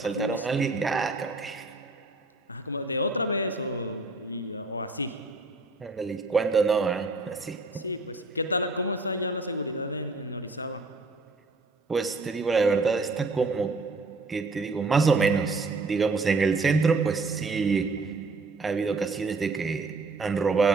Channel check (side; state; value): left; quieter; 3.5 dB